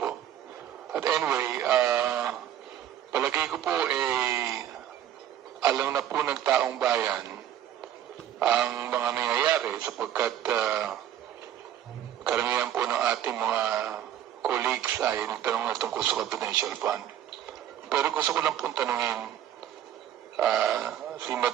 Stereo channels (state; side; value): quieter; left; 10.9 dB